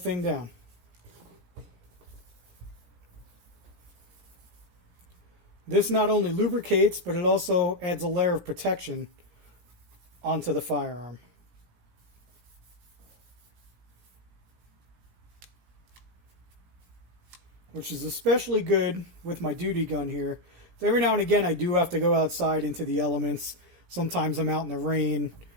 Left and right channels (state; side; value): late; left; 17 ms